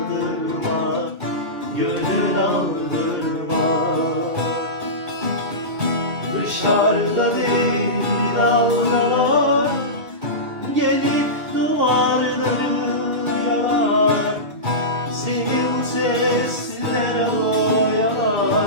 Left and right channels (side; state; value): left; late; 2.8 ms